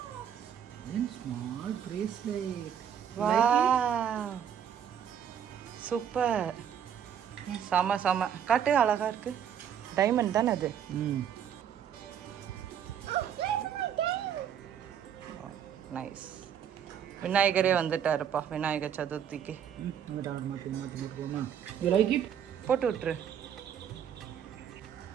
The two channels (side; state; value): left; quieter; 8.8 dB